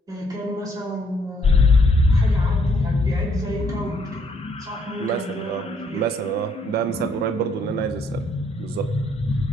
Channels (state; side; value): normal; both; correlation 0.69